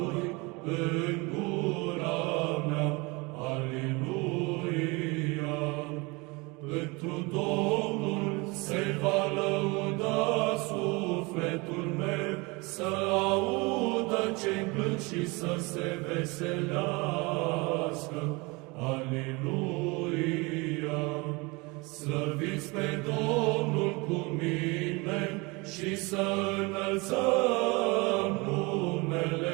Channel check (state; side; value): quieter; left; 26.3 dB